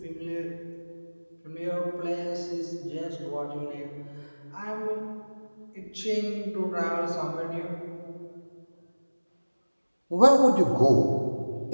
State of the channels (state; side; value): inverted; both; correlation -1.00